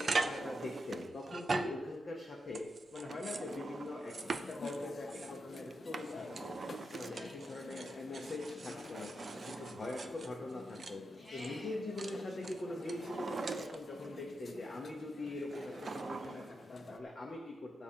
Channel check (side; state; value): both; normal; correlation 0.86